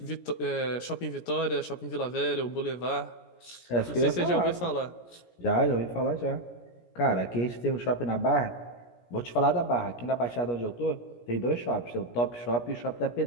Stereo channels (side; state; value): right; late; 17 ms